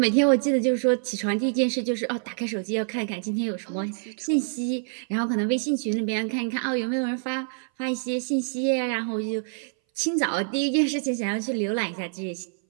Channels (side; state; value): left; silent; 58 dB below the other